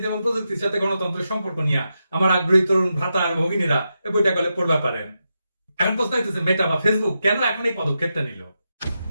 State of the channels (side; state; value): both; inverted; correlation -0.87